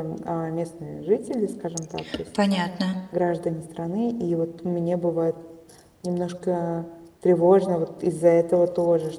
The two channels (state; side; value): identical; both; correlation 1.00